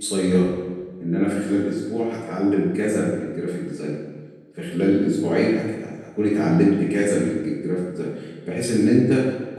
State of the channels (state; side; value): identical; both; correlation 1.00